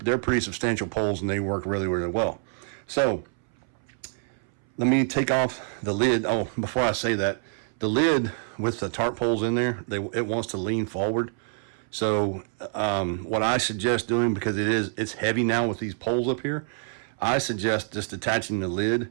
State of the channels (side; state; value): left; silent; 61 dB below the other